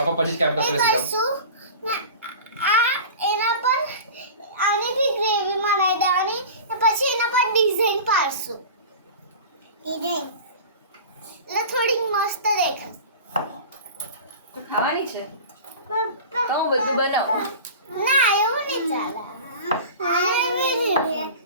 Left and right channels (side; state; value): both; inverted; correlation -0.35